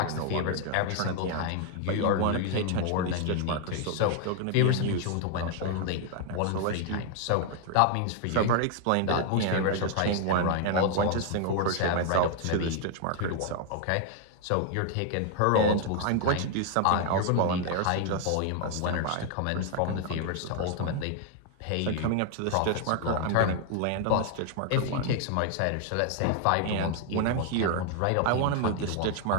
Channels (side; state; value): both; different; correlation 0.00